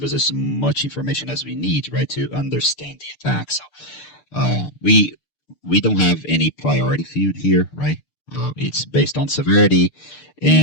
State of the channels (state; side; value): late; right; 6.7 ms